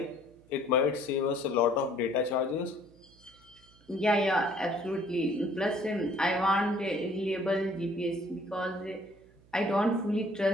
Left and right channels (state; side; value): noise; right; hum, 28 dB below the sound